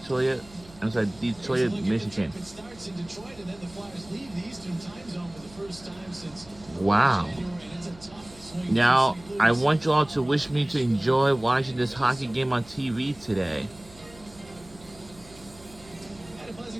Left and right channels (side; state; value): right; noise; hum, 22 dB below the sound